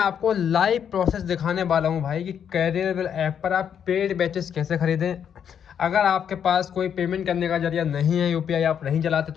लाइव प्रोसेस दिखाने वाला हूं भाई कि कैरियरबल ऐप पर आप पेड बैचेस कैसे खरीदें। अगर आपके पास कोई पेमेंट करने का जरिया नहीं है, यूपीआई आप नहीं चलाते,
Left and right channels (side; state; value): right; quieter; 8.3 dB